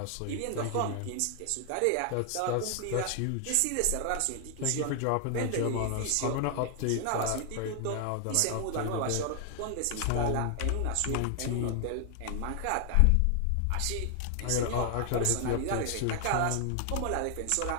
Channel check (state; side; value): different; both; correlation 0.00